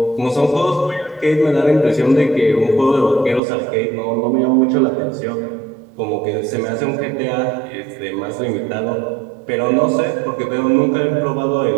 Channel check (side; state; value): left; drops out; at 3.4 s